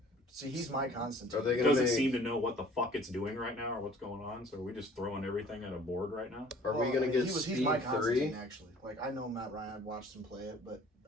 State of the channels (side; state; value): both; normal; correlation 0.51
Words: he's my Constantine. Are they gonna doesn't make, seem to know what the fuck it's doing right now or what's going on, so are we just throwing everything at a board right now? Are we gonna get he's Speed my 3? Constantine, actually. Like, I know Matt Ryan, I've watched him play it, but